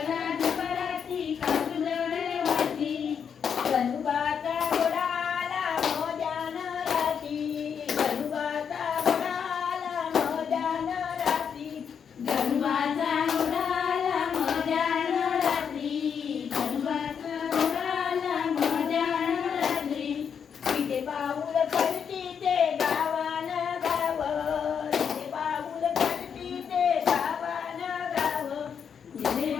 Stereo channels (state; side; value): quieter; right; 7.2 dB